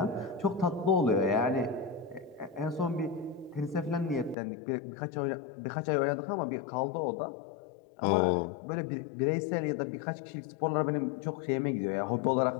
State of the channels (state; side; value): drops out; right; at 4.4 s